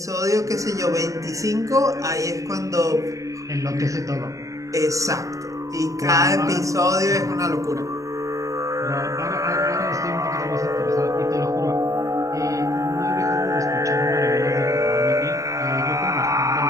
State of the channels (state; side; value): late; left; 0.16 ms